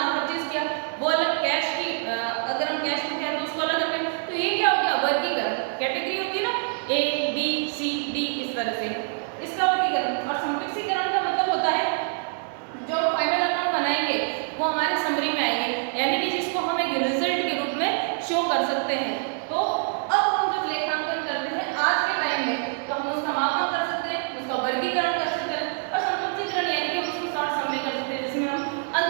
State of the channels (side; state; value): left; silent; 61 dB below the other